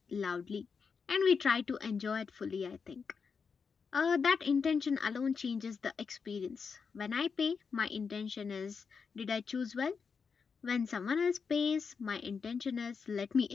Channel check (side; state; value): right; quieter; 5.6 dB